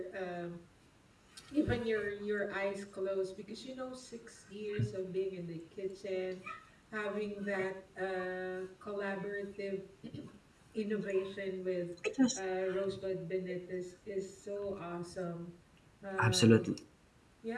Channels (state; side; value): identical; both; correlation 1.00